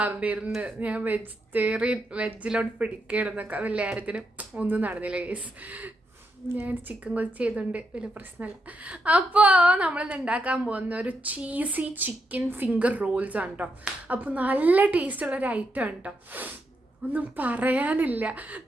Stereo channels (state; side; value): normal; both; correlation 0.82